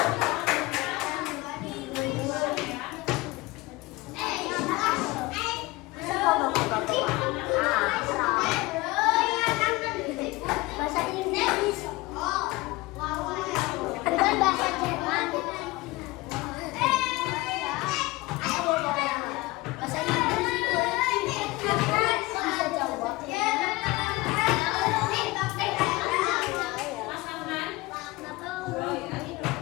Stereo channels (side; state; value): right; quieter; 21.2 dB